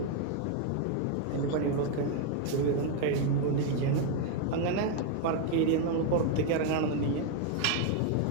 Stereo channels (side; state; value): both; different; correlation 0.01